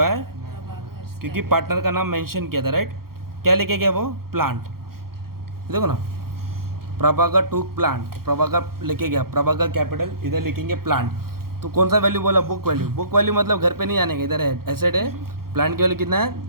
क्योंकि पार्टनर का नाम मेंशन किया था, राइट। क्या लेके गया वो, प्लांट, देखो ना, प्रभाकर टू प्लांट, प्रभाकर लेके गया, प्रभाकर कैपिटल, इधर लिखेंगे प्लांट। तो कौन सा वैल्यू बोला, बुक वैल्यू। बुक वैल्यू मतलब घर पे नहीं आने का, इधर है एसेट है, प्लांट की वैल्यू कितना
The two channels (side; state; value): left; late; 0.93 ms